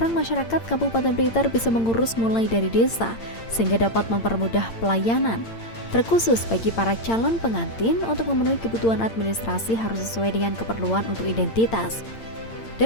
masyarakat Kabupaten Blitar bisa mengurus mulai dari desa sehingga dapat mempermudah pelayanan. Terkhusus bagi para calon pengantin untuk memenuhi kebutuhan administrasi harus sesuai dengan keperluan untuk identitas.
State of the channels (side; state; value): right; late; 8.8 ms